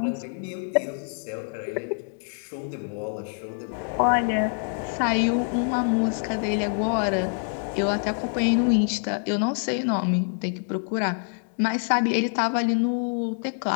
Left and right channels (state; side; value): silent; right; 61 dB below the other